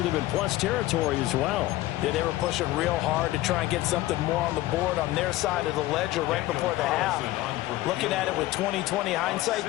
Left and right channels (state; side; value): quieter; right; 16.6 dB